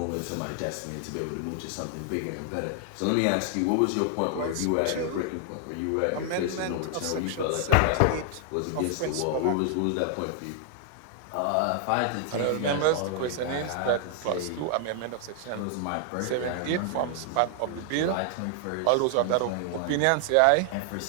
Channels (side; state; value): both; different; correlation 0.00